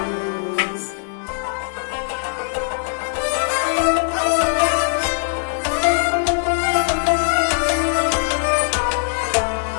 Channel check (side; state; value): right; silent; digital silence